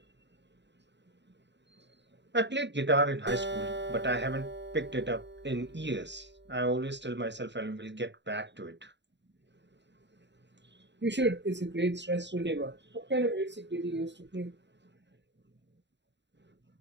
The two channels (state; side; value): late; left; 0.52 ms